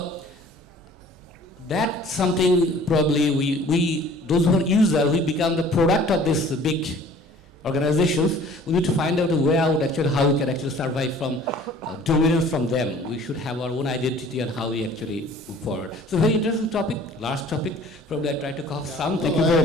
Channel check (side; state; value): both; normal; correlation 0.50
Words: that's something probably we those who are users, we become the product of this big organizations. We need to find out a way out actually how we can actually survive from dominance from them. We should have our own identity and how we actually move forward. So very interesting topic, last topic. Probably I try to cover some. Thank you